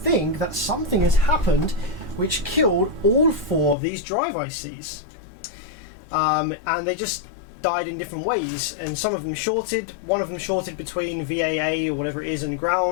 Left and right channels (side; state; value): right; drops out; at 3.8 s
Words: that something has happened which killed all 4 of these drive ICs, and they just died in different ways, and some of them shorted. One of them shorted between VAA or whatever it is and